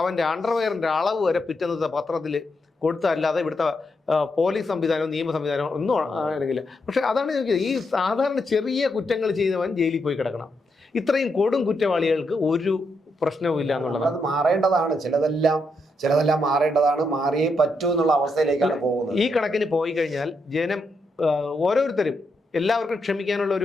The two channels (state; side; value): normal; both; correlation 0.81